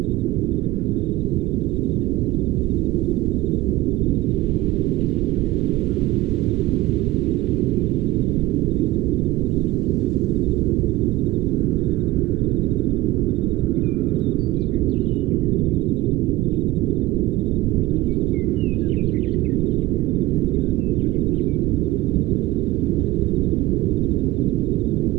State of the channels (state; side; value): quieter; left; 17.7 dB